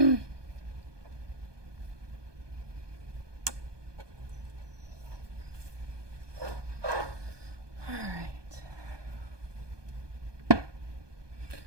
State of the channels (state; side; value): late; left; 1.2 ms